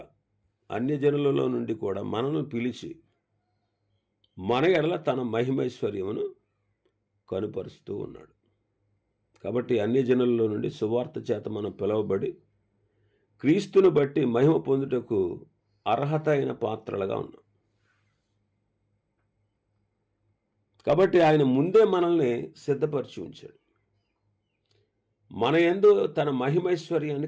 కూడా మనను పిలిచి మన ఎడల తన మహిమైశ్వర్యమును కనుపరుస్తూ ఉన్నాడు. కాబట్టి అన్యజనులలో నుండి సువార్త చేత మనం పిలువబడి క్రీస్తును బట్టి మహిమ పొందుటకు అర్హత అయిన పాత్రలుగా ఉన్నాం. కాబట్టి ఆయన ముందే మనల్ని సిద్ధపరిచి ఉంచాడు. మన యందు తన మహిమైశ్వర్యాన్ని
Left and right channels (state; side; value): identical; both; correlation 1.00